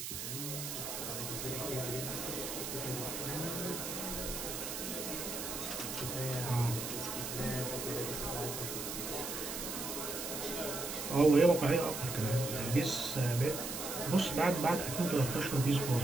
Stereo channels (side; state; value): right; noise; hiss, 5 dB below the sound